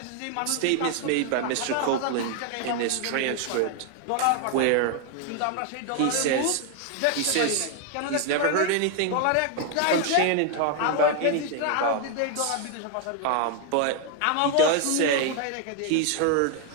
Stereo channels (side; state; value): both; different; correlation 0.00